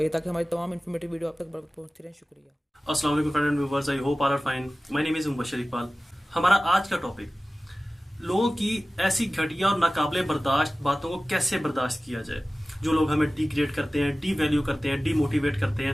ताकि हमारी तमाम इन्फॉर्मेटिव वीडियो आप तक पहुंचती रहे। शुक्रिया। अस्सलाम वालेकुम friend and viewers, I hope all are fine. My name is Mubashir Iqbal. हमारा आज का टॉपिक लोगों की ऐसी घटिया और नाकाबिले बर्दाश्त बातों को कैसे बर्दाश्त किया जाए। जो लोग हमें डिग्रेड करते हैं, डी वैल्यू करते हैं, डीमोटिवेट करते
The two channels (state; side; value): normal; both; correlation 0.97